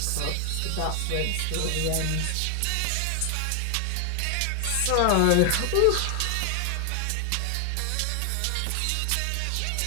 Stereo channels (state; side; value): different; both; correlation 0.00